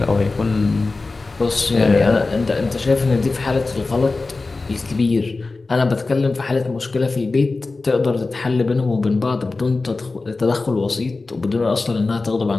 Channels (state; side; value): quieter; right; 3.6 dB